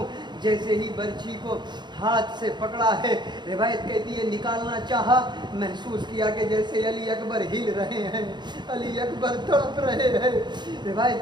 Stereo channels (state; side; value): late; left; 0.21 ms